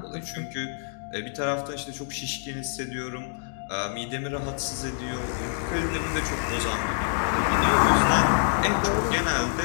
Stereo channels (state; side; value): silent; right; digital silence